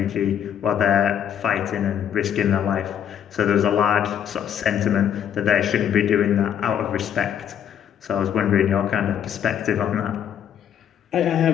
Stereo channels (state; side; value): quieter; right; 9.2 dB